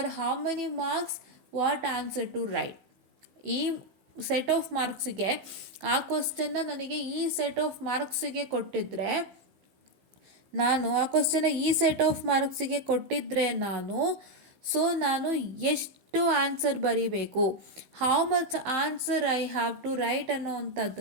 how many marks what answer to write. ಈ ಸೆಟ್ ಆಫ್ ಮಾರ್ಕ್ಸಿಗೆ ಆ ಕ್ವಶನ್ನ ನನಗೆ ಈ ಸೆಟ್ ಆಫ್ ಮಾರ್ಕ್ಸಿಗೆ ಕೊಟ್ಟಿದ್ದರೆ, ನಾನು ಆ ಕ್ವಶನ್ನ ಈ ಸೆಟ್ ಆಫ್ ಮಾರ್ಕ್ಸಿಗೆ ಕೊಟ್ಟಿದ್ದರೆ ಸೊ ನಾನು ಎಷ್ಟು ಆನ್ಸರ್ ಬರೀಬೇಕು, how much answer I have to write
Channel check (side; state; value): left; late; 16 ms